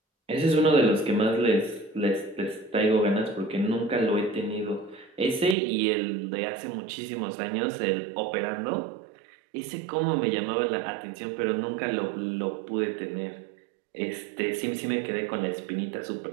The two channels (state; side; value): drops out; left; at 5.6 s